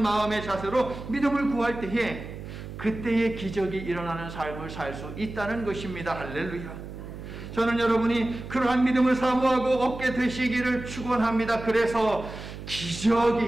마음의 자세로 믿음을 구할 때에 그때의 기적이 일어나는 삶을 살 수 있다는 것입니다. 할렐루야. 저는 여러분이 그러한 믿음을 사모하고 얻게 되시기를 축원합니다. 그래서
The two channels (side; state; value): right; noise; hum, 11 dB below the sound